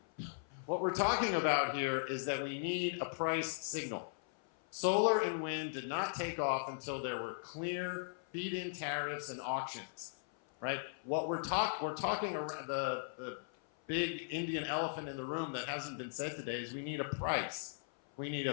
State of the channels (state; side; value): silent; right; 52 dB below the other